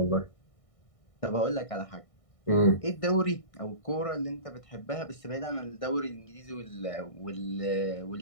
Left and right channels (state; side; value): late; right; 1.6 ms